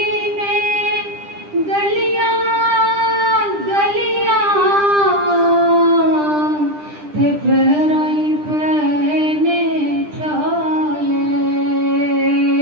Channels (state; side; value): late; left; 10 ms